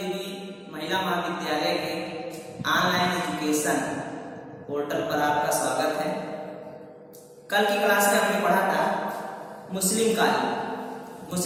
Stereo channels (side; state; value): both; identical; correlation 1.00